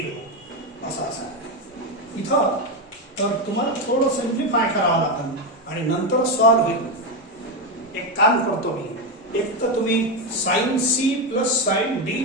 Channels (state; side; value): normal; both; correlation 0.10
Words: असा आहे. इथं तर तुम्हाला थोडं सिम्प्लिफाय करावं लागेल आणि नंतर सॉल्व होईल. एक काम करतो मी, एक तर तुम्ही sine c plus sine d